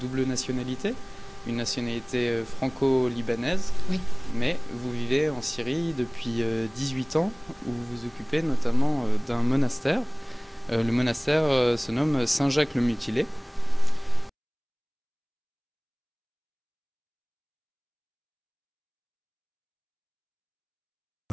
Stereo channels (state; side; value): identical; both; correlation 1.00